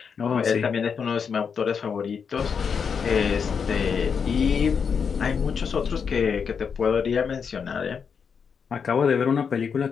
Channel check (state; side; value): quieter; right; 6.4 dB